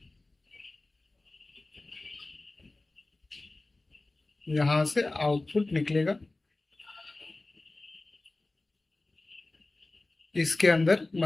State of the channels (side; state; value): right; quieter; 3.0 dB